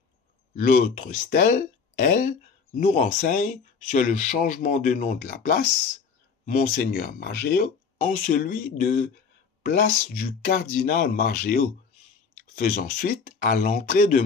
L'autre stèle, elle, nous renseigne sur le changement de nom de la place, Monseigneur Margéo, en celui de place du cardinal Margéo, faisant suite à l'entrée de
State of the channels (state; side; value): quieter; right; 5.6 dB